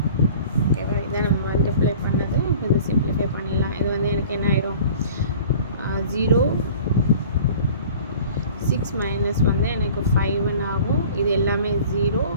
ஓகேவா? இதை நம்ம மல்டிப்ளை பண்ணது. இப்போ இது சிம்பிளிஃபை பண்ணிடலாம். இது வந்து எனக்கு என்ன ஆயிரும் 0 6 minus வந்து எனக்கு 5 ஆகும். இது எல்லாமே 0.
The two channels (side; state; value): both; inverted; correlation -0.46